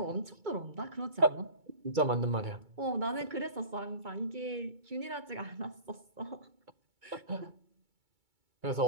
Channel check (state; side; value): late; left; 2.3 ms